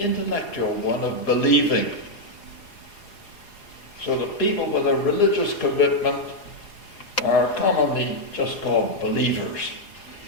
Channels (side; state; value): right; late; 4.8 ms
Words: one of believing, so that people with a religious commitment are commonly just called believers.